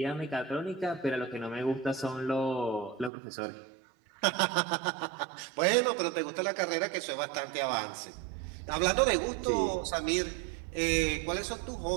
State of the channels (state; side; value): drops out; left; at 3.1 s